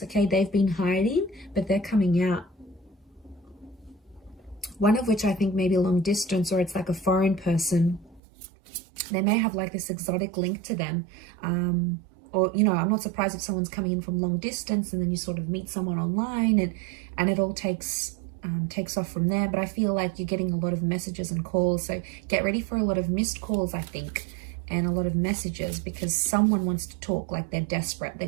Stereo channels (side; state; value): left; drops out; at 8.2 s